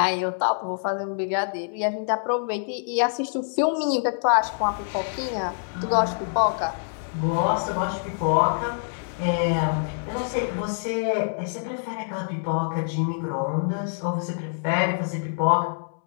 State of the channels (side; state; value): right; silent; 61 dB below the other